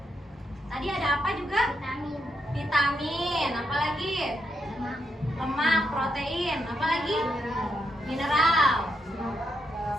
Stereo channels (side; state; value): both; normal; correlation 0.79